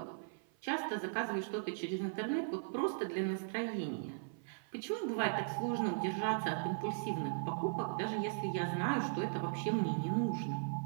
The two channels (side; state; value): left; silent; 52 dB below the other